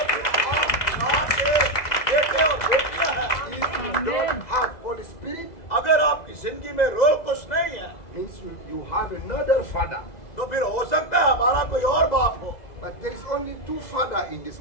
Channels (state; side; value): late; right; 2.0 ms